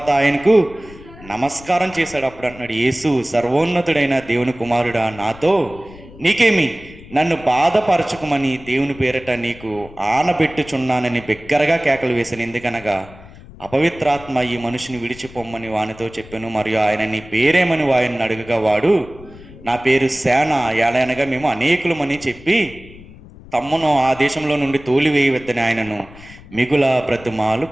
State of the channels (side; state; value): left; noise; rumble, 19 dB below the sound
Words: ఆయనకు నమస్కారం చేశాడు. అప్పుడు అంటున్నాడు, యేసు, సర్వోన్నతుడైన దేవుని కుమారుడా, నాతో నీకేమి? నన్ను బాధపరచుకోమని దేవుని పేరట నీకు ఆనబెట్టుచున్నానని బిగ్గరగా కేకలు వేశాను. ఎందుకనగా అపవిత్రాత్మ ఈ మనిషిని విడిచిపోమ్మని వానితో చెప్పాను. మరియు ఆయన నీ పేరేమని వారిని అడుగగా వాడు, నా పేరు సేన, ఏలనగా మేము అనేకులమని చెప్పి తమ్మును ఆ దేశంలో నుండి తోలివేయవద్దని ఆయనను మిగుల బ్రతిమాలు